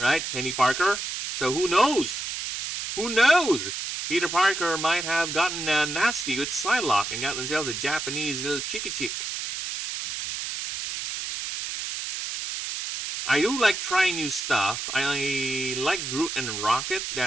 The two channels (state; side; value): noise; right; hiss, 5 dB below the sound